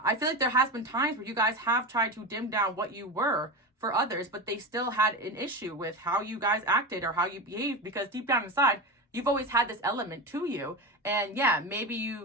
I feel like there has been times where you guys have tried to dim down what you were for others, but they still had an issue with how you guys acted or how you behaved, because deep down inside, you've always had this element to you. And yeah, maybe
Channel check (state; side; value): normal; both; correlation 0.22